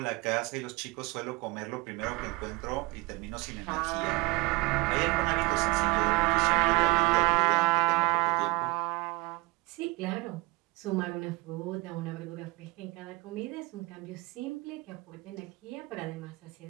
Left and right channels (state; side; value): quieter; left; 23.6 dB